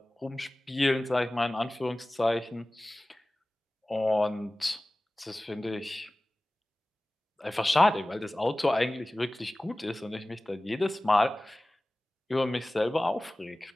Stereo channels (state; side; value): normal; both; correlation 0.97